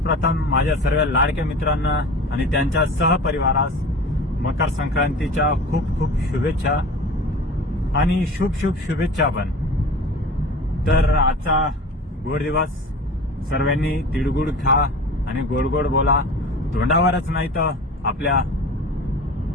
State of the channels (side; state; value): both; normal; correlation 0.38